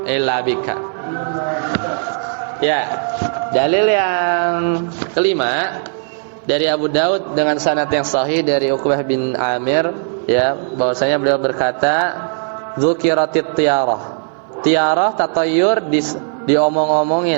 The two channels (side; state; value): left; silent; 58 dB below the other